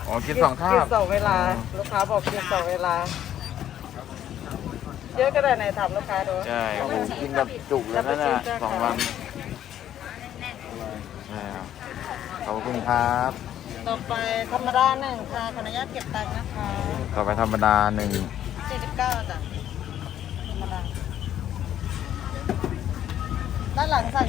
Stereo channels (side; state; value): right; quieter; 11.1 dB